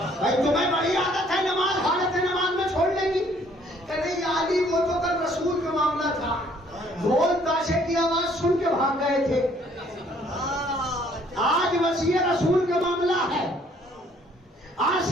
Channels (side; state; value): both; normal; correlation 0.62